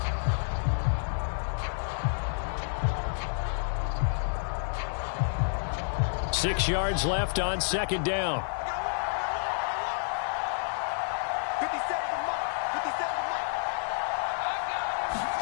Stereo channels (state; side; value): silent; right; digital silence